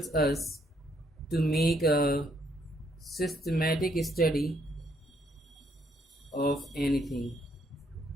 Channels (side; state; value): both; normal; correlation 0.71